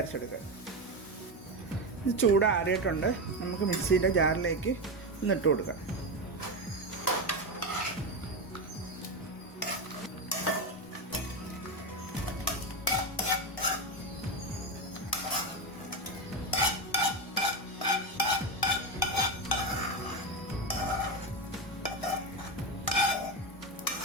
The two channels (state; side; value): normal; both; correlation 0.14